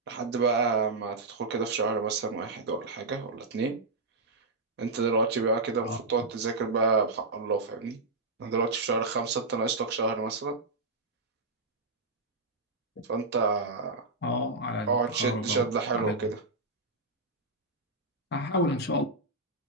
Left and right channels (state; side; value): quieter; left; 3.2 dB